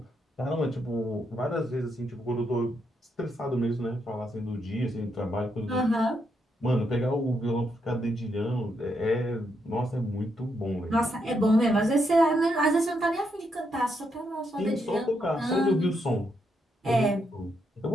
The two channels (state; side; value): normal; both; correlation 0.79